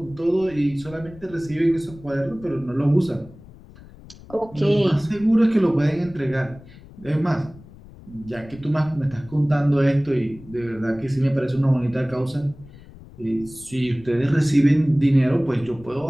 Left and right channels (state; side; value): noise; left; rumble, 20 dB below the sound